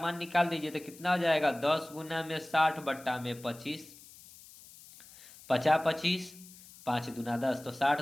निकाल दीजिए तो कितना हो जाएगा, 10 गुना में 60 बट्टा में 25, 25 5 दूना 10, तो 60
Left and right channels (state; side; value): noise; left; hiss, 20 dB below the sound